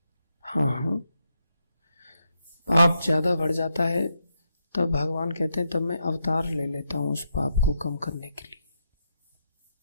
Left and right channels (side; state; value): both; inverted; correlation -0.81